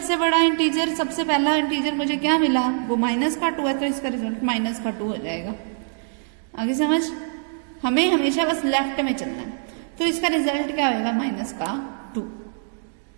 बड़ा इंटीजर, सबसे पहला इंटीजर मुझे क्या मिला, वो माइनस का 2 है, तो इसका रिजल्ट माइनस का 2 हो जाएगा। आगे समझ, हमें हमेशा बस लेफ्ट में चलना है, तो इसका रिजल्ट क्या होगा, माइनस का 2।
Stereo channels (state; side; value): silent; left; digital silence